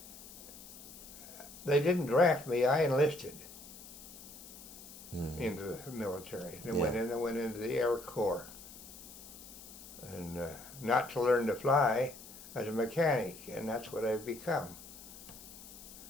they didn't draft me. I enlisted into the military. And I went into the Air Corps, and not to learn to fly, as a mechanic, and that's what I've become.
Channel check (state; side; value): noise; left; hiss, 16 dB below the sound